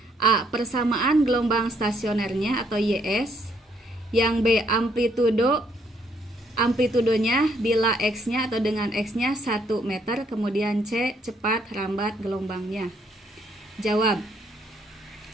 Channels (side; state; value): both; normal; correlation 0.69